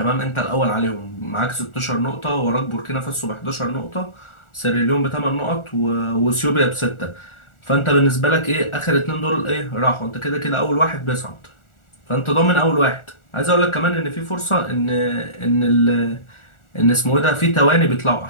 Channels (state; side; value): late; right; 1.4 ms